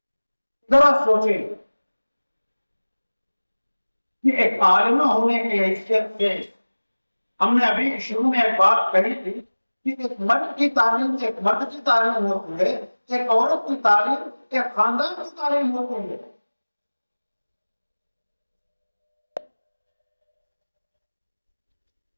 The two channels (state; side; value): inverted; both; correlation -1.00